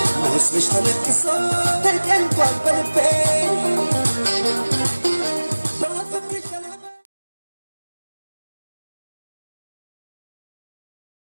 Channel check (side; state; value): both; inverted; correlation -1.00